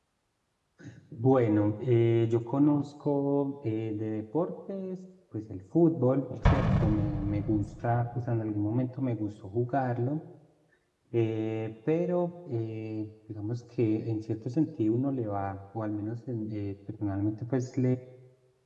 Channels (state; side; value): identical; both; correlation 1.00